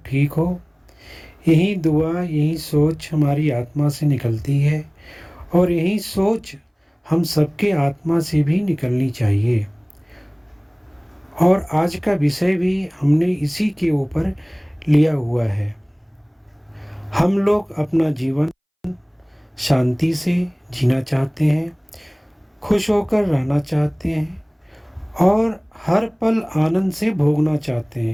ठीक हो, यही दुआ, यही सोच हमारी आत्मा से निकलती है और यही सोच हम सबके आत्मा से भी निकलनी चाहिए। और आज का विषय भी हमने इसी के ऊपर लिया हुआ है। हम लोग अपना जीवन शांति से जीना चाहते हैं, खुश होकर रहना चाहते हैं और हर पल आनंद से भोगना चाहते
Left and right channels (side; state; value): both; identical; correlation 1.00